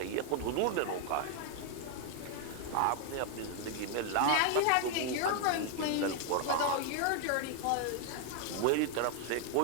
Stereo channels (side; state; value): both; different; correlation 0.00